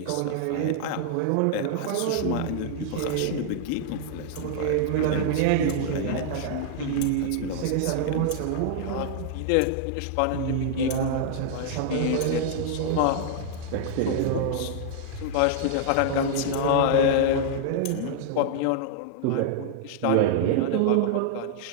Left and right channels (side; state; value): both; different; correlation -0.01